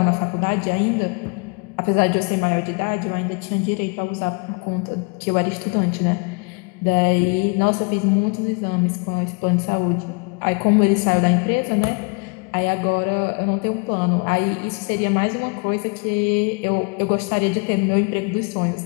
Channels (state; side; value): quieter; right; 33.5 dB